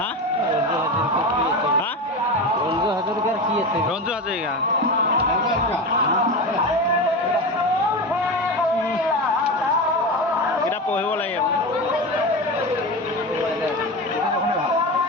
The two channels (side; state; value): both; normal; correlation 0.23